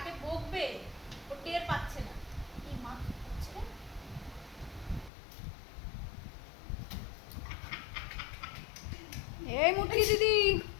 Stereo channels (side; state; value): right; drops out; at 5.1 s